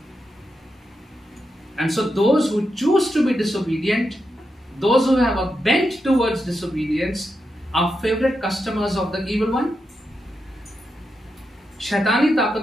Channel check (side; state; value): both; normal; correlation 0.86